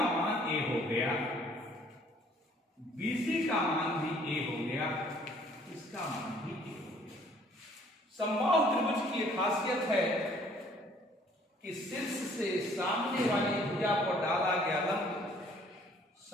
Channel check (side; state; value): both; normal; correlation 0.59